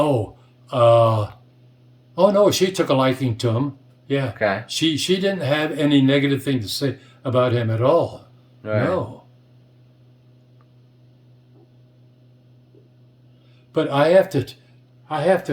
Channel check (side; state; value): both; identical; correlation 1.00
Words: no, she took a liking to him. Yeah. Okay. She didn't have any negative thing to say about him at all. Right. No. But I have